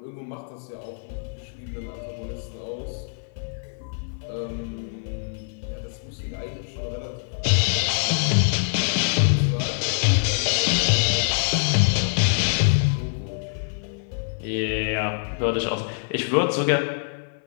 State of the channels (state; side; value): silent; right; 55 dB below the other